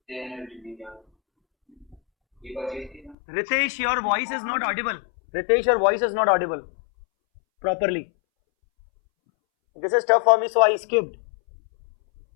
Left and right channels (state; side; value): drops out; right; at 3.2 s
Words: Ritesh, your voice is not audible. Ritesh, your voice is not audible properly. This is tough for me, so I skipped.